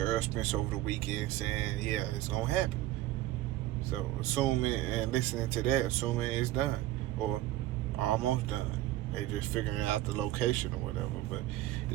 Errol Spence over the weekend saying, yeah, it's going to happen. So assuming and listening to that, assuming it's done or almost done. They just figuring out the location or whatever. But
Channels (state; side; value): quieter; left; 15.2 dB